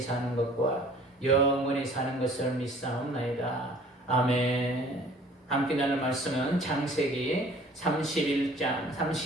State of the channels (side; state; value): both; normal; correlation 0.51